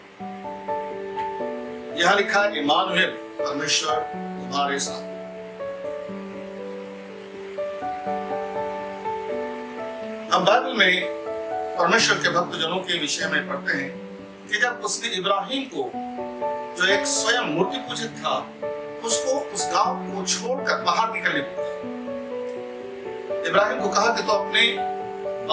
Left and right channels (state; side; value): identical; both; correlation 1.00